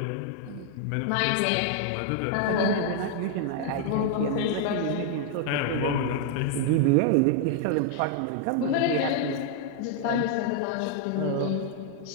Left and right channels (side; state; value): both; different; correlation 0.00